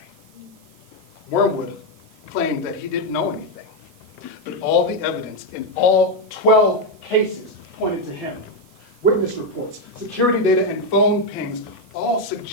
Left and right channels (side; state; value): right; noise; hiss, 29 dB below the sound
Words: Wormwood claimed that he didn't know anything, but all the evidence in all 12 cases pointed to him. Witness reports, security data, and phone pings all